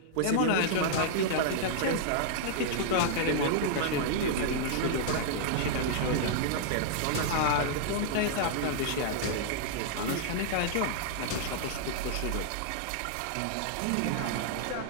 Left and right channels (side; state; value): both; different; correlation -0.01